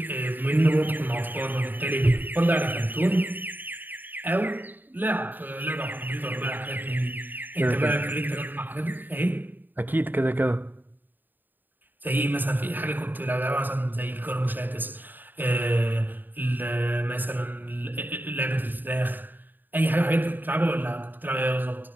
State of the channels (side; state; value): left; late; 0.090 ms